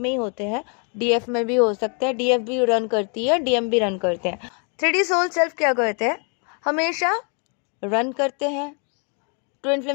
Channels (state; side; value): quieter; right; 39.5 dB